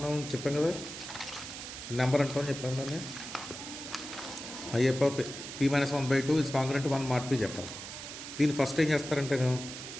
చెప్పాం కదా, నెంబర్ అంటామని చెప్పాం దాన్ని. A power P minus 1/2 is congruent to 1 mod P చెప్పాలి. దీన్ని ఫస్ట్ ఏం చేస్తారంటే,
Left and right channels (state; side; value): noise; right; hiss, 10 dB below the sound